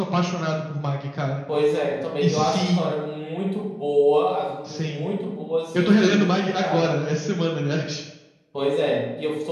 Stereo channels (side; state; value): both; identical; correlation 1.00